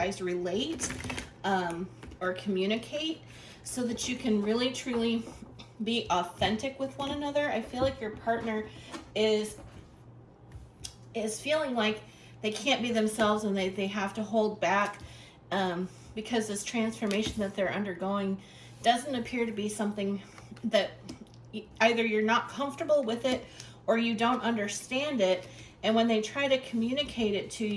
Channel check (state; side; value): identical; both; correlation 1.00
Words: relate or communicate so that you can really truly be authentic with one another. I feel like your partner is feeling like they can't be themselves and they have to hold back because this transformation that they're undergoing doesn't appear to be something that either you're not comfortable with it or you don't understand it. And when they try to communicate it to